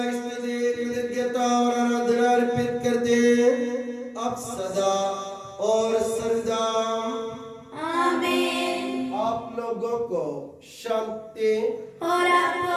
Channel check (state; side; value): identical; both; correlation 1.00